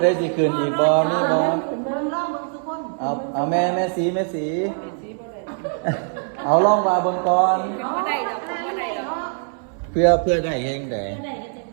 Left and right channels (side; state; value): left; silent; 64 dB below the other